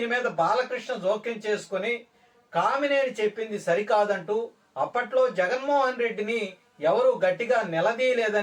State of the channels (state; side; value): identical; both; correlation 1.00